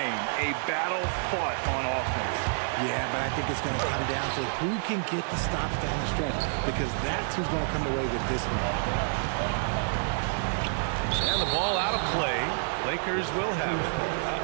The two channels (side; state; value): left; silent; digital silence